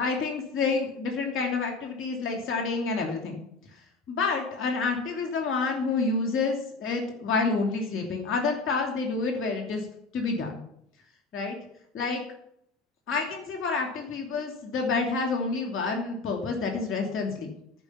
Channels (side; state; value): right; quieter; 3.8 dB